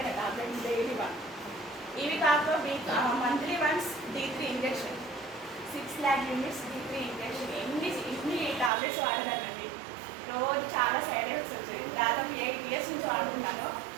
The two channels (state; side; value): drops out; left; at 8.7 s